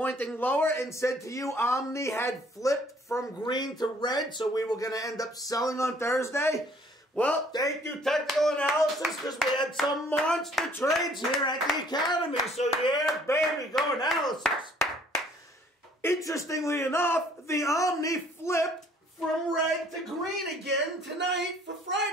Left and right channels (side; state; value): both; normal; correlation 0.59